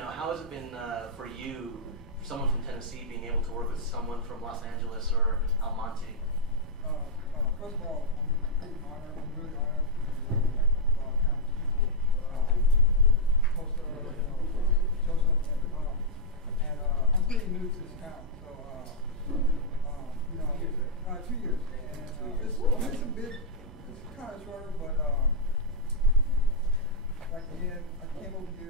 how has it been for you, someone from Tennessee, being able to work with someone from Los Angeles or Almonte? First of all, I'm pretty honored. I'm really honored to work with like talented people, Toestah, Joseph, and I'm pretty new to this town. So 2 years. And it's a bit, it's kind of shorter, but like again, I came over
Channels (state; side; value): normal; both; correlation -0.06